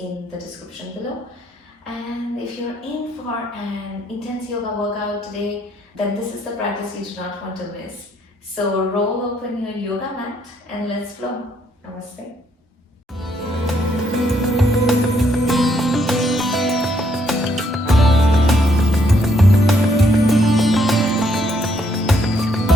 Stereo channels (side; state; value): both; normal; correlation 0.71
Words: the description below. And if you're in for an intense yoga workout today, then this is the practice you do not want to miss. So roll open your yoga mat and let's flow. Namaste.